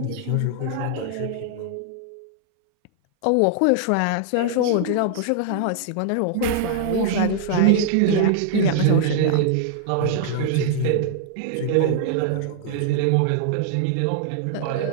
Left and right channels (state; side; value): different; both; correlation -0.01